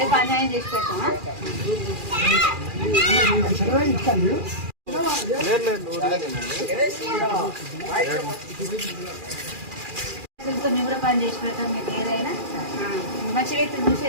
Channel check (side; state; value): left; late; 2.4 ms